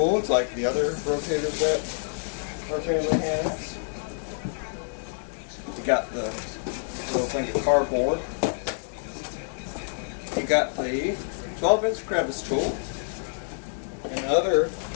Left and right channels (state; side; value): silent; right; digital silence